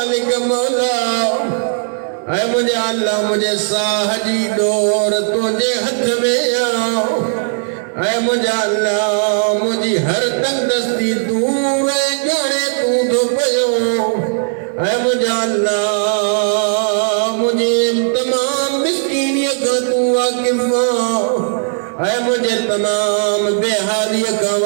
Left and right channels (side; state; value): left; silent; digital silence